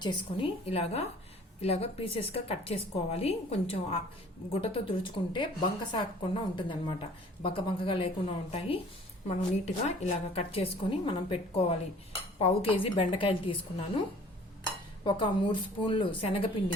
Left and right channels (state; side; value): normal; both; correlation 0.51